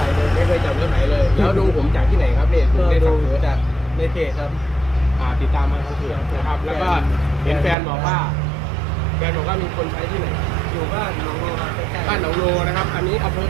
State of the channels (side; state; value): left; drops out; at 7.8 s